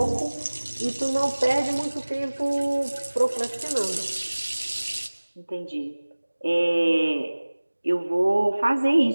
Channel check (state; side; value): inverted; both; correlation -1.00